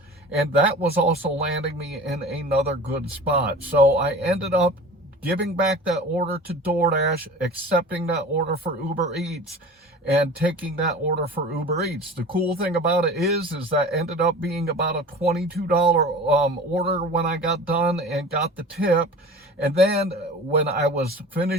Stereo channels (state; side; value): normal; both; correlation 0.38